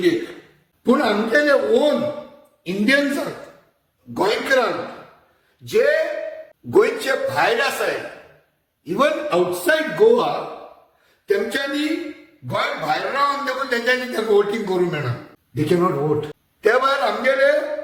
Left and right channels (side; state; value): both; identical; correlation 1.00